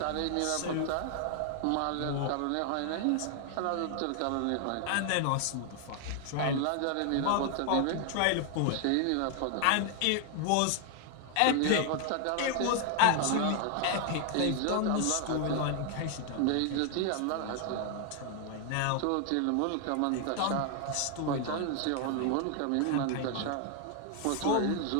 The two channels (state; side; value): different; both; correlation 0.00